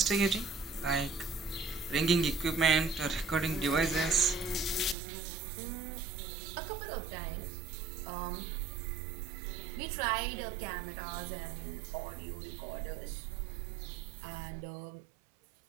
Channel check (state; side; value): drops out; left; at 5.0 s